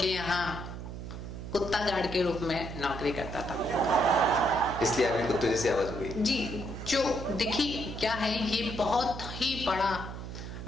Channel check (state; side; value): noise; right; hum, 8 dB below the sound